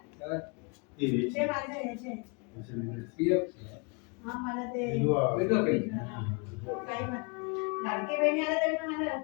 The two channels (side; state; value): right; quieter; 32.6 dB